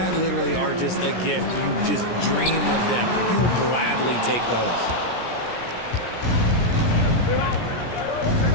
literally are just a gift. You just dream of them. He'll gladly take those.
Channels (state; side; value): late; right; 17 ms